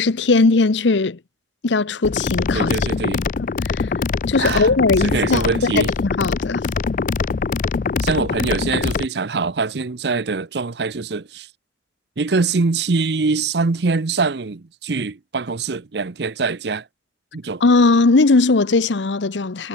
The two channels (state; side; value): normal; both; correlation 0.27